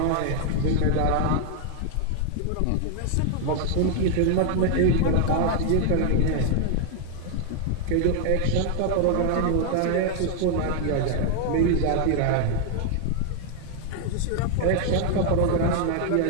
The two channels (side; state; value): both; different; correlation 0.00